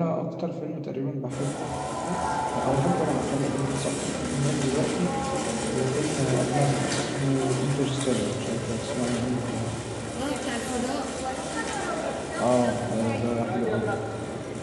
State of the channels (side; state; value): both; identical; correlation 1.00